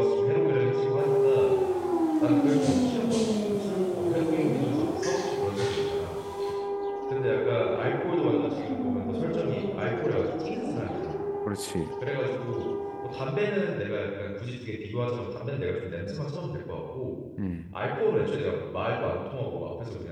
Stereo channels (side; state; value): both; identical; correlation 1.00